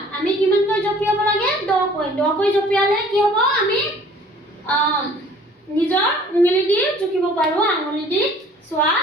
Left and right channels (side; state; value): both; normal; correlation 0.53